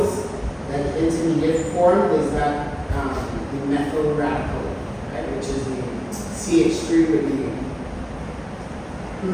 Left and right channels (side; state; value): both; identical; correlation 1.00